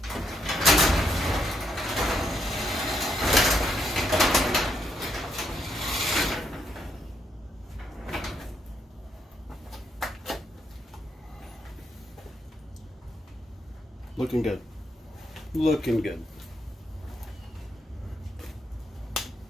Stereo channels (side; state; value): both; normal; correlation 0.77